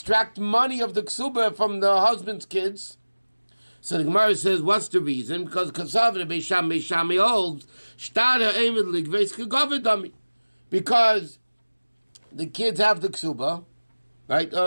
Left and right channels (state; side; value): inverted; both; correlation -1.00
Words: money of the ksuba from the husband's kids? So the Gemara says, what's the reason? Because Kasavra Beis Shammai holds Shtara Eimed Ligveis Kegovedami. Because the kids have the ksuba, right?